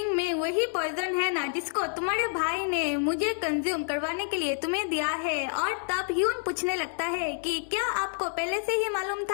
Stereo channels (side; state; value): right; silent; digital silence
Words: में वही पॉइजन है ना जिसको तुम्हारे भाई ने मुझे कंज्यूम करवाने के लिए तुम्हें दिया है। और तब ह्यून पूछने लगता है कि क्या आपको पहले से ही मालूम